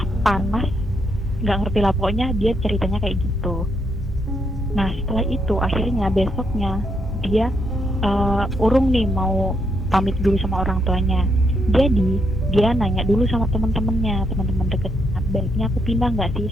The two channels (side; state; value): both; normal; correlation 0.77